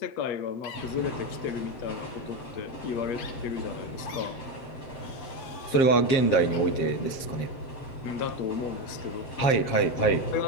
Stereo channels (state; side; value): late; right; 7.5 ms